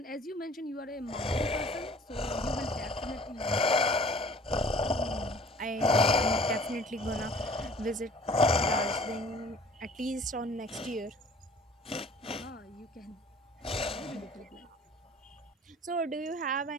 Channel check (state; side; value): normal; both; correlation 0.51